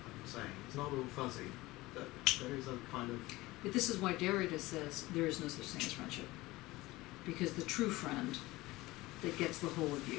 I'm saying, it's not all fuzzy, but there is a kind of... But this is why Derrida says there is no such thing as friendship. Because the true friend that gets the whole of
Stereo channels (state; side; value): quieter; right; 19.6 dB